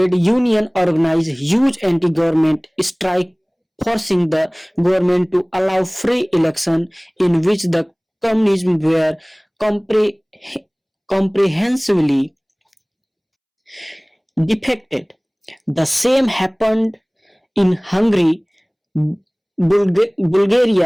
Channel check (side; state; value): both; identical; correlation 1.00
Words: Union organized huge anti-government strike, forcing the government to allow free election in which the communists were compre- comprehensively defected. The same happened in Hungary,